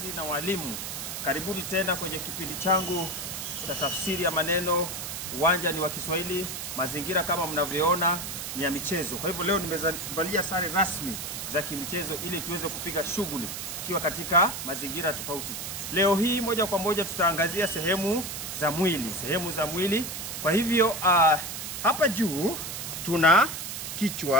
na walimu, karibuni tena kwenye kipindi changu cha tafsiri ya maneno. Uwanja ni wa Kiswahili, mazingira kama mnavyoona ni ya michezo. Kwa hivyo leo nimevalia sare rasmi za kimichezo ili tuweze kupiga shughuli tukiwa katika mazingira tofauti. Leo hii moja kwa moja tutaangazia sehemu za mwili. Kwa hivyo hapa juu tuna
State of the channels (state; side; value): noise; right; hiss, 6 dB below the sound